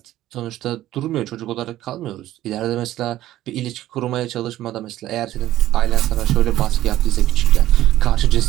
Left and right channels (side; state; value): left; quieter; 14.2 dB